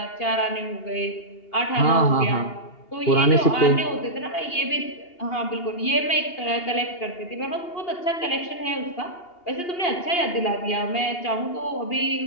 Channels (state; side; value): late; right; 2.8 ms